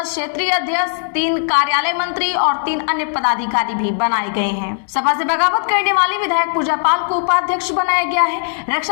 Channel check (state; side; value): silent; right; 68 dB below the other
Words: क्षेत्रीय अध्यक्ष, 3 कार्यालय मंत्री और 3 अन्य पदाधिकारी भी बनाए गए हैं। सपा से बगावत करने वाली विधायक पूजा पाल को उपाध्यक्ष बनाया गया है।